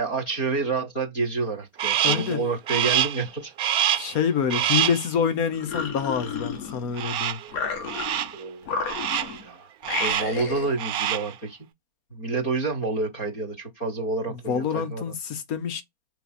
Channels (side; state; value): right; late; 4.3 ms